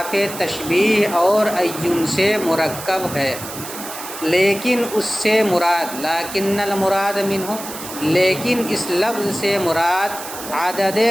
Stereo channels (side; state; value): right; noise; hiss, 11 dB below the sound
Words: تشبیہ اور عین سے مرکب ہے، لیکن اس سے مراد لیکن المراد منہ، لیکن اس لفظ سے مراد عدد